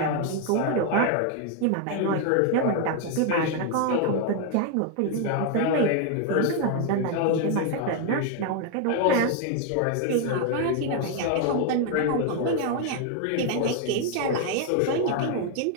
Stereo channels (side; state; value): both; different; correlation 0.01